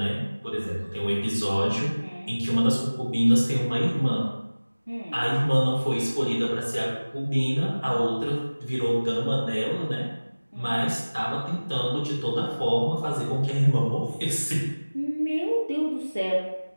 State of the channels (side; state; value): both; inverted; correlation -1.00